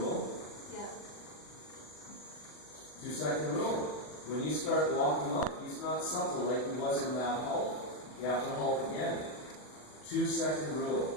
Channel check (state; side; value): late; right; 40 ms